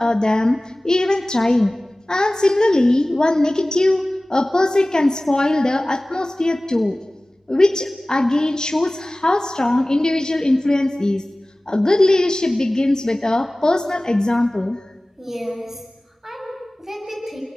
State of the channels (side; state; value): both; normal; correlation 0.98